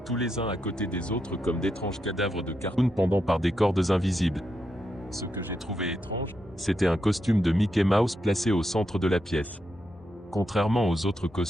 tous les uns à côté des autres comme d'étranges cadavres de cartoon pendant par des cordes invisibles. Ce que j'ai trouvé étrange, c'était un costume de Mickey Mouse placé au centre de la pièce. Contrairement aux autres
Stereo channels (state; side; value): normal; both; correlation 0.83